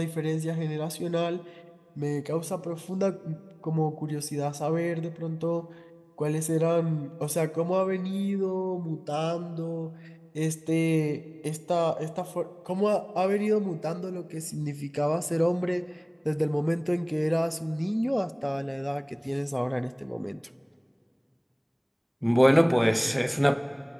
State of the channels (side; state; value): both; identical; correlation 1.00